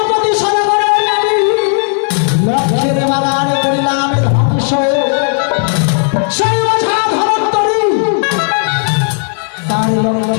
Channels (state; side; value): silent; right; 62 dB below the other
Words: সরকারের নামে লক্ষ্যের বাগান করিলাম ধ্বংস। সেই ওঝা ধনন্তরী তার